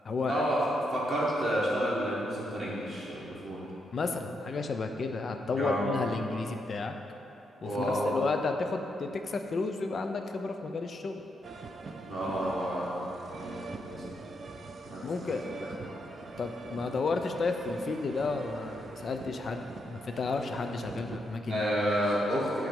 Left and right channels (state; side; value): normal; both; correlation 0.80